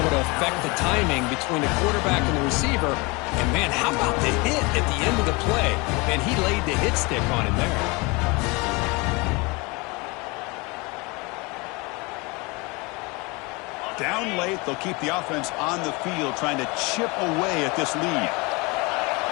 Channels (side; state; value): right; quieter; 26.8 dB